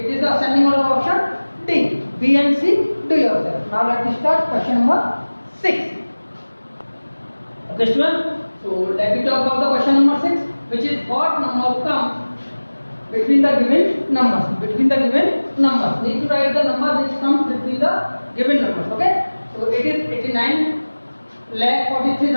is the ascending order option D. B and C, do yourself. Now let us start question number 6. Okay, student. So let me talk about the question number 6, which is what number comes between the given numbers. Between the given numbers, need to write the number which comes between the given numbers. Okay. So it is 89 lakh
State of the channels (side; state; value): both; inverted; correlation -1.00